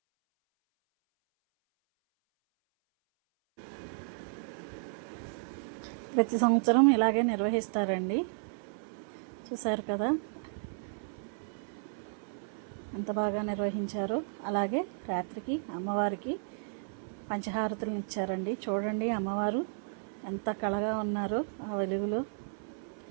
ప్రతి సంవత్సరం ఇలాగే నిర్వహిస్తారండి. చూసారు కదా ఎంత బాగా నిర్వహించారో. అలాగే రాత్రికి అమ్మవారికి పంచహారతులను ఇచ్చారండి. చూడండి అమ్మవారు ఎంత కళగా ఉన్నారో ఆ వెలుగులో.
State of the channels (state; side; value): silent; left; 56 dB below the other